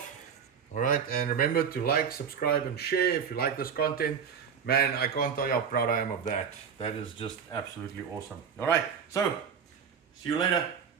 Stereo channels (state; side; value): quieter; left; 7.0 dB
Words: All right, and remember to like, subscribe, and share if you like this content. Man, I can't tell you how proud I am of that. That is just absolutely awesome. All right, so see you later.